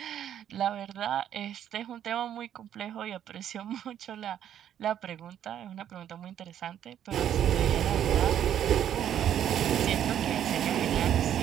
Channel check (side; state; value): left; quieter; 10.2 dB